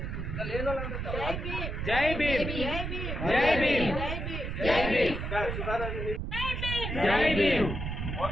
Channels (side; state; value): right; noise; rumble, 4 dB below the sound